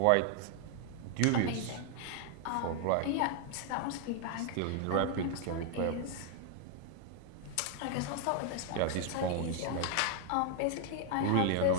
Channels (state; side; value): different; both; correlation 0.00